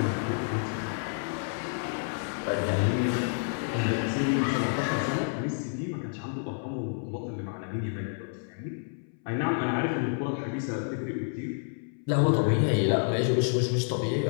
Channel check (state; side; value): silent; right; 58 dB below the other